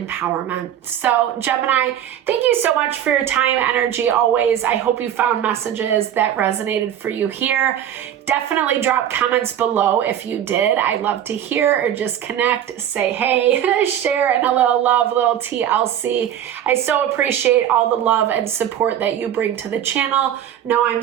So Gemini, thank you so much for your time, energy always. I hope you found messages that resonated for you here. Definitely drop comments below if you did. I love to hear, or just connect, say hey, share, and a little love, little TLC. I so appreciate all the love and support that you bring to the channel. Know I'm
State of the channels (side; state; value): left; quieter; 10.3 dB